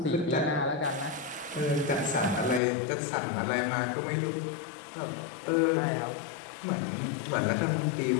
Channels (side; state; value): right; drops out; at 2.6 s